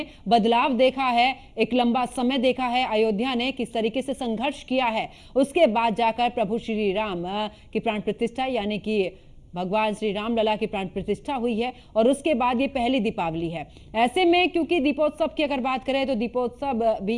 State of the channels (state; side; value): identical; both; correlation 1.00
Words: बदलाव देखा है। एक लंबा समय देखा है अयोध्या ने किस तरीके से संघर्ष किया है, उसके बाद जाकर प्रभु श्री राम की प्राण प्रतिष्ठा यानी कि भगवान श्री राम लला की प्राण प्रतिष्ठा हुई है और उसके बाद ये पहली दीपावली है। ऐसे में क्योंकि दीपोत्सव की अगर बात करें तो दीपोत्सव भी